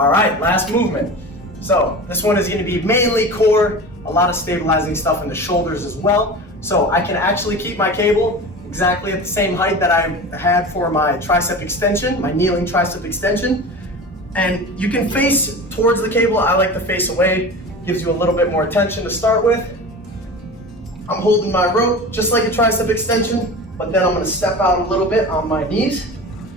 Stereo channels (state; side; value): normal; both; correlation 0.33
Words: right, last movement. So this one is gonna be mainly core, a lot of stabilizing stuff in the shoulders as well. So I can actually keep my cable exactly at the same height that I had for my tricep extension, my kneeling tricep extension. And you can face towards the cable. I like to face away, gives you a little bit more tension to start with. I'm holding my rope just like a tricep extension, but then I'm gonna step out a little bit on my knees,